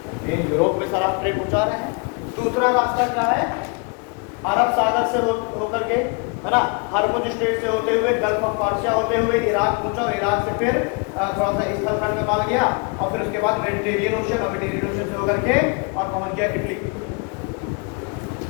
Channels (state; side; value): quieter; right; 33.0 dB